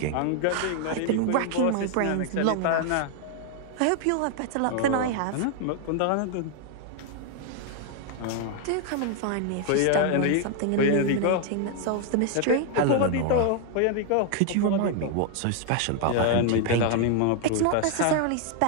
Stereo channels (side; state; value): both; different; correlation 0.00